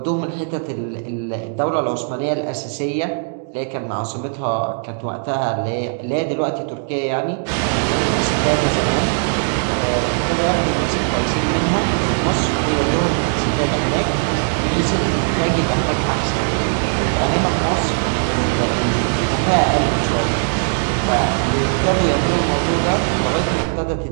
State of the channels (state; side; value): silent; left; 64 dB below the other